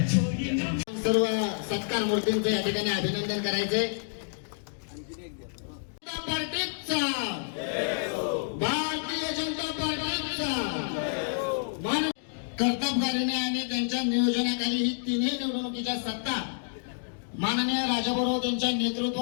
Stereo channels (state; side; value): silent; right; digital silence